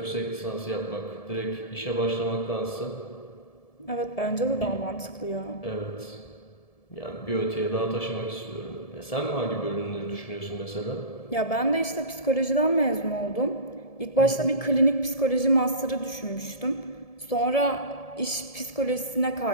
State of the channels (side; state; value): right; late; 1.7 ms